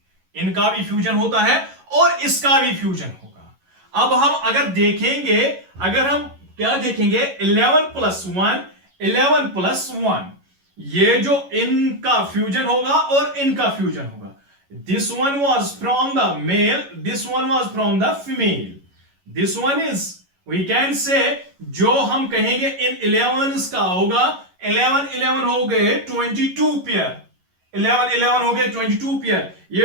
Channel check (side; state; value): left; late; 11 ms